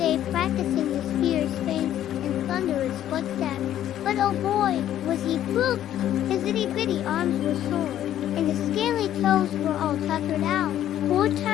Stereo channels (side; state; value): right; quieter; 11.6 dB